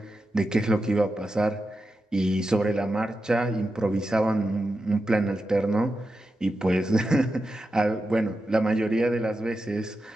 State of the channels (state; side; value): normal; both; correlation 0.89